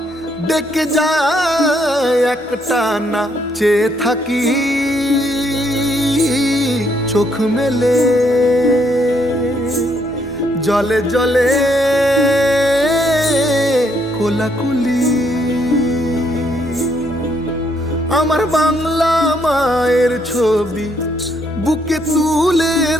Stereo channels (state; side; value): normal; both; correlation 0.72